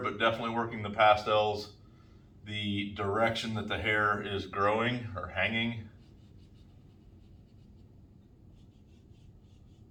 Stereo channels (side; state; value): both; identical; correlation 1.00